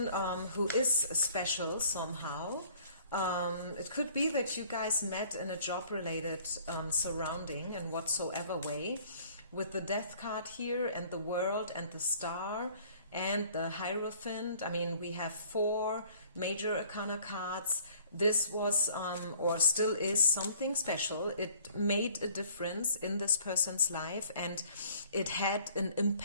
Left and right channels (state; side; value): inverted; both; correlation -0.55